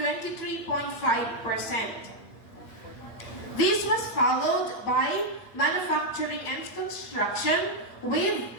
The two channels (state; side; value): late; right; 8.5 ms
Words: This was followed by manufacturing and construction with